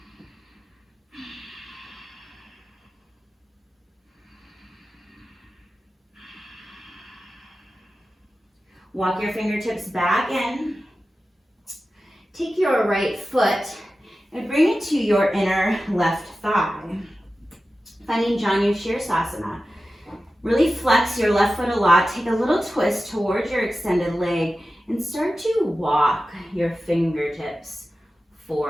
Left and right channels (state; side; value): normal; both; correlation 0.94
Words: Walk your fingertips back in. Take your right foot and bring it to your inner left thigh. Finding Janu Shirsasana. Really flex your left foot a lot. Take a little twist towards your extended leg and start to walk your fingertips